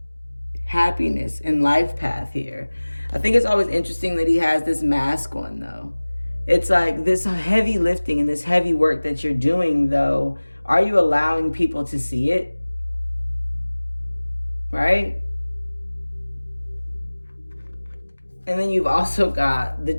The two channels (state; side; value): inverted; both; correlation -1.00